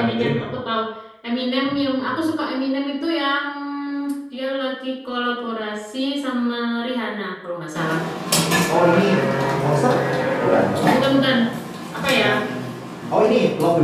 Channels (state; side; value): identical; both; correlation 1.00